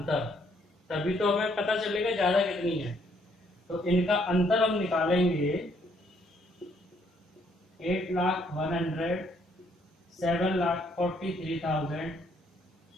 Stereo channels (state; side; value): normal; both; correlation 0.68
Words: तभी तो हमें पता चलेगा ज्यादा कितनी है। तो इनका अंतर हम निकालेंगे 8,01,000, 7,43,000,